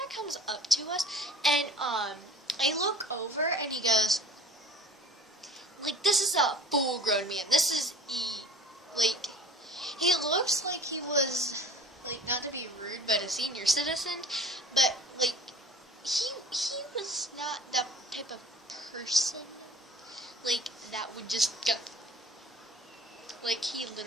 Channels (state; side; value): normal; both; correlation 0.44